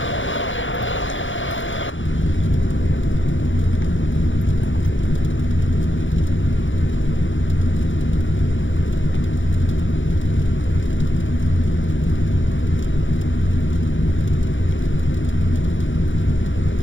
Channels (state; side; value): late; right; 0.56 ms